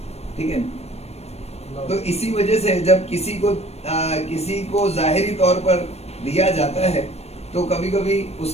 ٹھیک ہے. تو اسی وجہ سے جب کسی کو ظاہری طور پر دیا جاتا ہے تو کبھی کبھی اس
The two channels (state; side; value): late; right; 0.31 ms